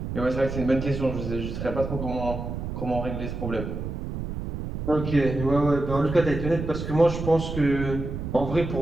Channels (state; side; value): noise; right; rumble, 6 dB below the sound